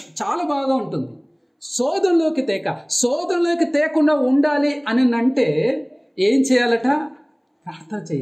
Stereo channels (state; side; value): identical; both; correlation 1.00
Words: చాలా బాగా ఉంటుంది. శోధనలోకి తేకుండా ఉండాలి అని అంటే ఏం చేయాలట? ప్రార్థన